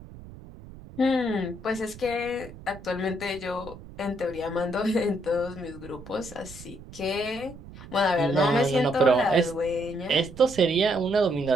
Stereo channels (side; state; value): right; noise; rumble, 17 dB below the sound